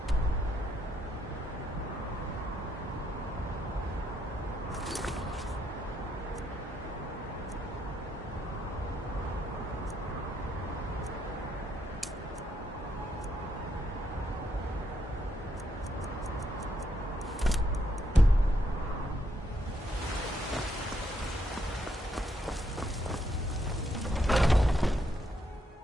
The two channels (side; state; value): both; normal; correlation 0.76